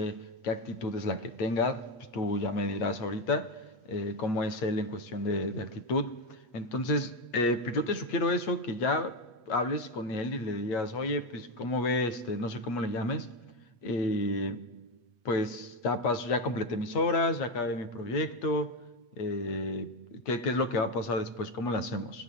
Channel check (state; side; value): late; right; 8.4 ms